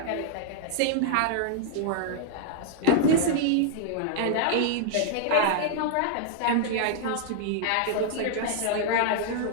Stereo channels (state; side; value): different; both; correlation -0.01